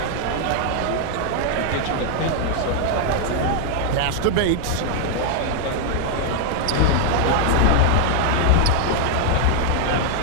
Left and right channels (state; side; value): different; both; correlation 0.00